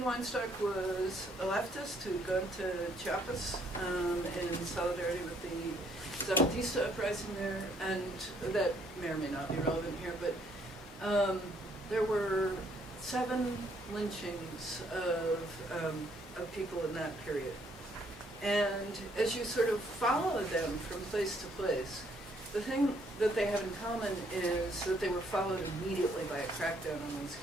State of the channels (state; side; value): normal; both; correlation 0.67